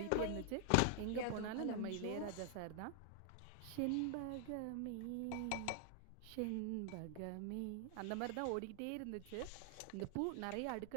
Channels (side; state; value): both; different; correlation 0.00